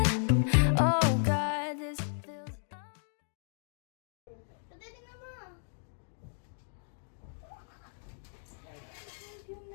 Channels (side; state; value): right; silent; digital silence